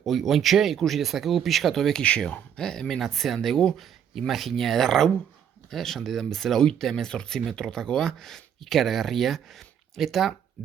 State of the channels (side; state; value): left; quieter; 8.7 dB